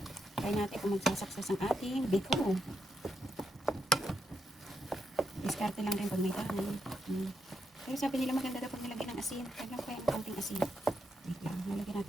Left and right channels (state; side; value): normal; both; correlation 0.82